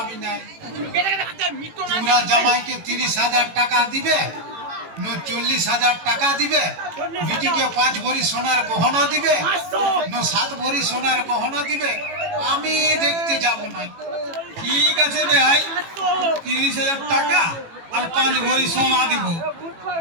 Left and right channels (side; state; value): left; late; 18 ms